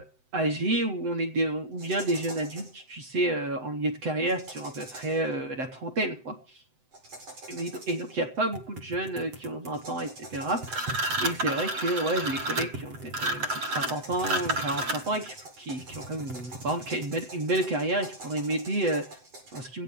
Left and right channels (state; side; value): late; left; 7.9 ms